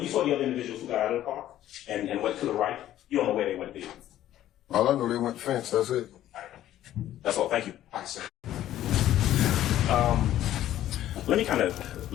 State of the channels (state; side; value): quieter; right; 12.8 dB